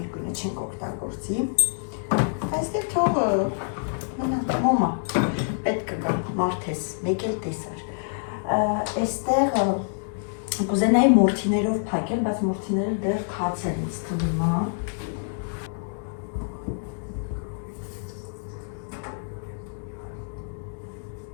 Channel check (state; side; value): silent; right; digital silence